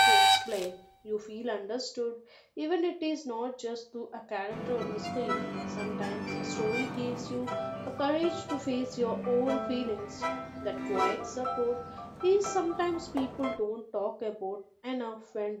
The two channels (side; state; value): both; identical; correlation 1.00